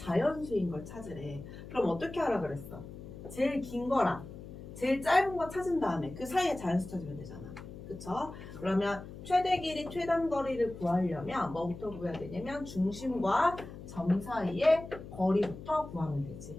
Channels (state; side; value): noise; left; hum, 13 dB below the sound